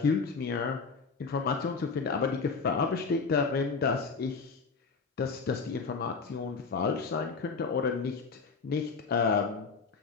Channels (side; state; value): right; quieter; 4.8 dB